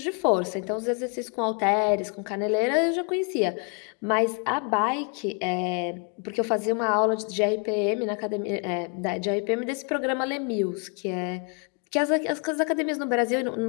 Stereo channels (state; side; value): quieter; right; 37.9 dB